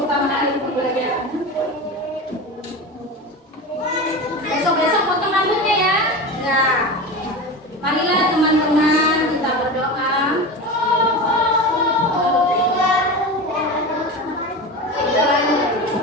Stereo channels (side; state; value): both; normal; correlation 0.26